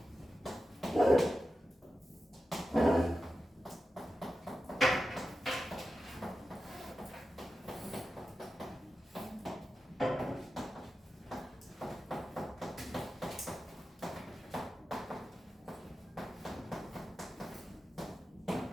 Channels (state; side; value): normal; both; correlation 0.92